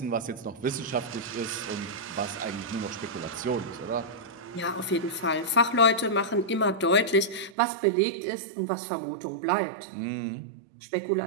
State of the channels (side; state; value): left; drops out; at 7.6 s